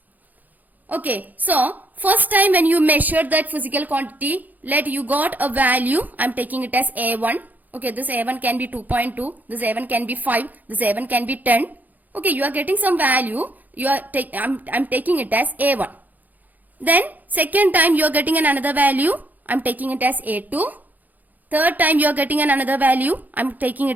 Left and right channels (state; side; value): late; left; 0.082 ms